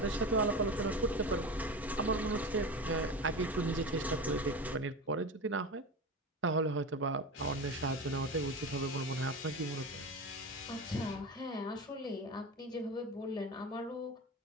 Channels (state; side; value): normal; both; correlation 0.27